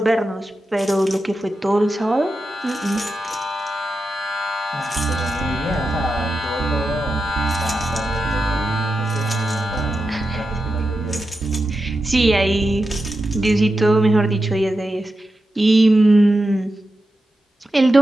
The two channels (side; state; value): both; normal; correlation 0.89